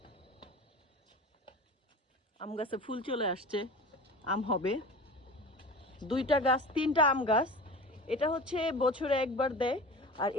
আম গাছে ফুল চলে আসছে, আম হবে। 2টা গাছ, 3টা আম গাছ। এটা হচ্ছে বছরে একবার দেয়, আর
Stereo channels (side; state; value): both; normal; correlation 0.35